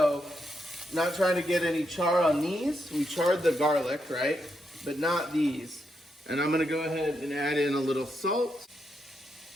not trying to get any char on these. We charred the garlic, right? But not these. And I'm gonna go ahead and add in a little salt,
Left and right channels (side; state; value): both; normal; correlation 0.82